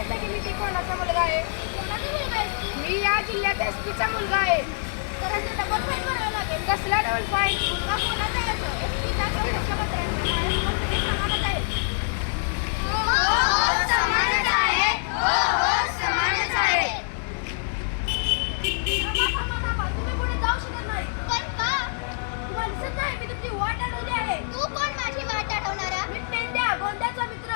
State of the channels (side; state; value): right; silent; digital silence